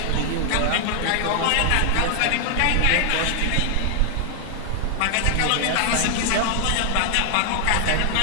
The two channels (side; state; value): both; different; correlation 0.00